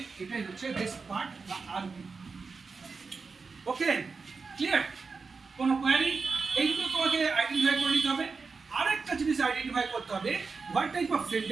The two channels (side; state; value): left; quieter; 4.7 dB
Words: এটাই হচ্ছে রেস্ট পার্ট বা আরপি। ওকে, ক্লিয়ার? কোনো কোয়ারি? এইগুলো তোমাকে আইডেন্টিফাই করে নিতে হবে। আরেকটা জিনিস আইডেন্টিফাই করতে হবে, what type of